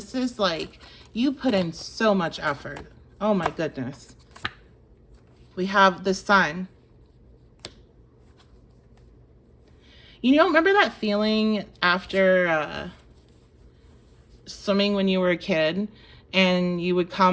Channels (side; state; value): both; identical; correlation 1.00